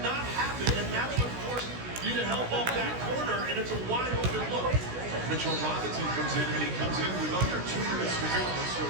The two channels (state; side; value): late; left; 16 ms